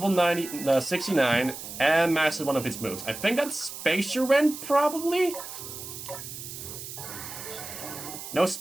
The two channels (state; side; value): noise; right; hiss, 10 dB below the sound